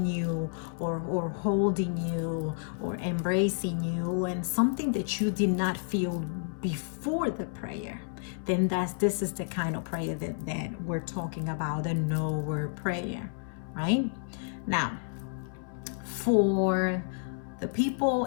you or holding you or embracing you, and something that you did not feel before the prayer, then this is the kind of prayer that we're talking about, the no word prayer, right? Now, for the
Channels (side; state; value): right; silent; 58 dB below the other